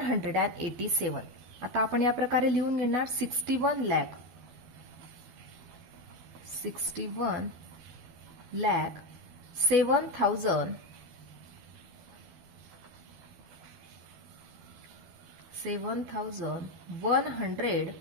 आता आपण या प्रकारे लिहून घेणार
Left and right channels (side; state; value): left; late; 12 ms